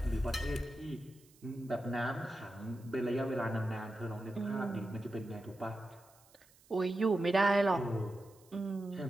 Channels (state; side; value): noise; right; hiss, 28 dB below the sound